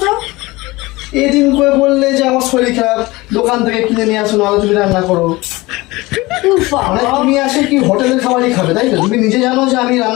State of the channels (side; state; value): right; quieter; 21.3 dB